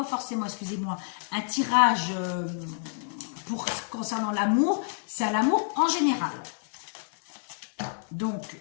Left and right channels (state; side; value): silent; right; 59 dB below the other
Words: forcément, excusez-moi, un tirage concernant l'amour. C'est à l'amour en général. Donc,